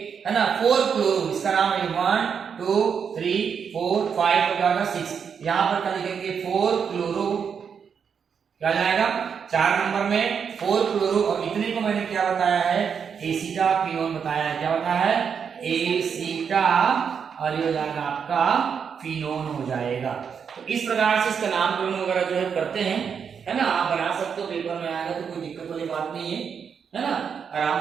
है ना 4 क्लोरो, इसका नाम है 1 2 3 4 5 और क्या होगा 6, यहां पर क्या लिखेंगे 4 क्लोरो, क्या जाएगा 4 नंबर में 4 क्लोरो और इतने को मैंने क्या बताया है एसीटा फिनोन बताया है, क्या बताया है एसीटा और ये हो जाएगा आपका फिनोन हो जाएगा। तो इस प्रकार से इसका नामकरण वगैरह जो है करते हैं है ना, आप बना सकते हो, पेपर में आएगा तो कोई दिक्कत वाली बात नहीं है ना, आराम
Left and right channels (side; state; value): left; quieter; 6.8 dB